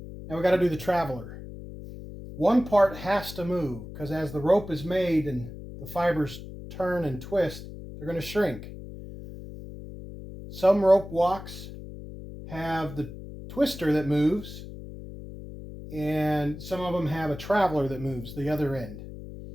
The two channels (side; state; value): left; noise; hum, 12 dB below the sound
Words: Now we got to do the traveler. One part has to move because as the rope is made and the fibers turn and twist, they're going to shrink. Some rope walks have the twister that moves, and some of them have a traveler that moves the other end.